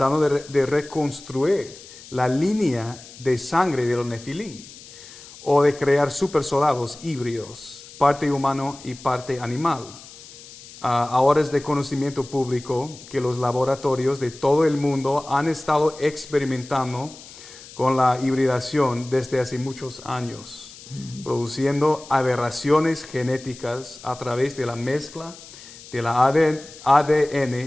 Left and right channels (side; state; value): left; noise; hiss, 18 dB below the sound